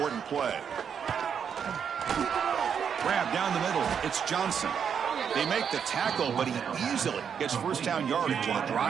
play. Grab down the middle. It's Johnson. They make the tackle, but he easily gets first down yardage, and the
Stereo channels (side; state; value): left; quieter; 7.4 dB